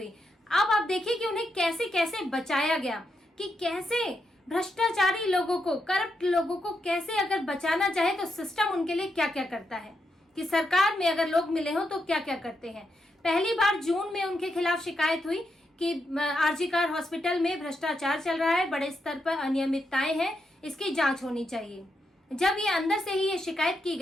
अब आप देखिए कि उन्हें कैसे कैसे बचाया गया, कि कैसे भ्रष्टाचारी लोगों को, करप्ट लोगों को कैसे अगर बचाना चाहे तो सिस्टम उनके लिए क्या क्या करता है, कि सरकार में अगर लोग मिले हो तो क्या क्या करते हैं। पहली बार जून में उनके खिलाफ शिकायत हुई कि आरजी कार हॉस्पिटल में भ्रष्टाचार चल रहा है, बड़े स्तर पर अनियमितताएं हैं, इसकी जांच होनी चाहिए। जब ये अंदर से ही ये शिकायत की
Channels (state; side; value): normal; both; correlation 0.83